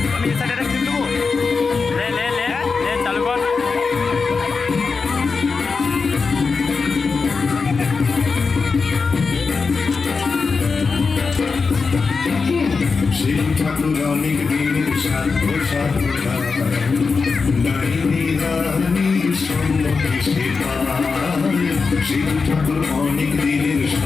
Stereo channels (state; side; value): quieter; right; 4.7 dB